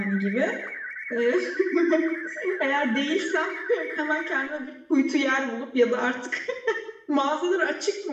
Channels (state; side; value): identical; both; correlation 1.00